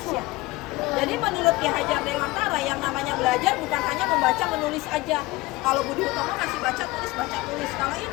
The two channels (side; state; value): right; quieter; 20.9 dB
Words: Jadi menurut Ki Hajar Dewantara yang namanya belajar bukan hanya membaca menulis aja. Kalau Budi Utomo masih baca tulis. Kalau